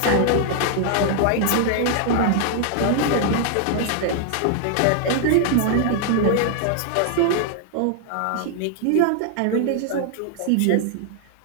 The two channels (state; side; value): different; both; correlation 0.00